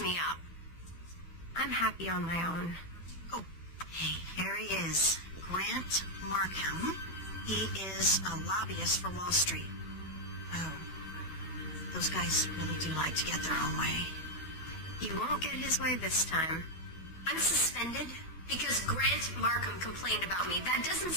me up. I'm happy on my own. Oh, hey, here he is. Grant Markham. He is a lobbyist for Wall Street. Oh, those guys really do like to get their own way. He won't get his way this time. I'm suspended because Grant Markham complained about me. That doesn't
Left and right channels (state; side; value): late; right; 12 ms